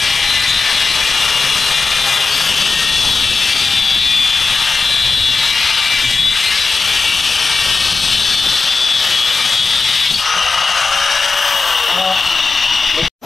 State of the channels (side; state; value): right; quieter; 4.3 dB